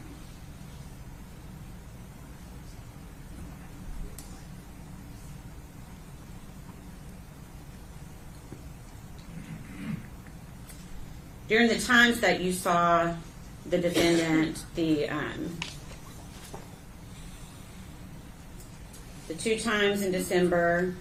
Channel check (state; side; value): identical; both; correlation 1.00